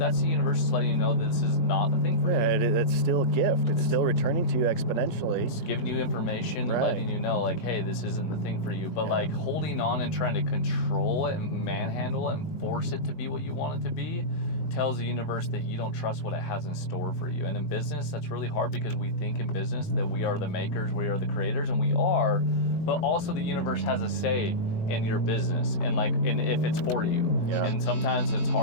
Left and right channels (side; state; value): right; late; 18 ms